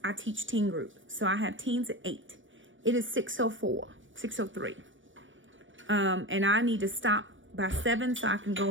I teach teen group. So I have teens at 8. It is 6:04, 6:03. And I need to stop by 7 so I can go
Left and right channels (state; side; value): late; left; 0.56 ms